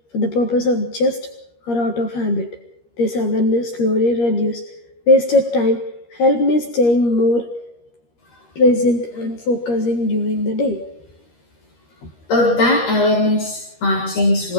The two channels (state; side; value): late; right; 13 ms